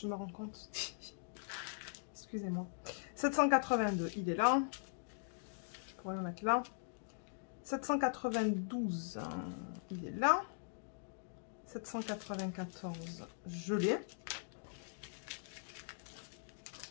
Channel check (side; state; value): right; silent; digital silence